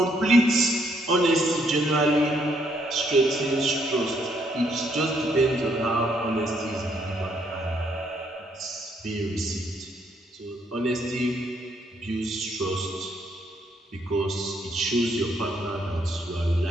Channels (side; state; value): both; normal; correlation 0.71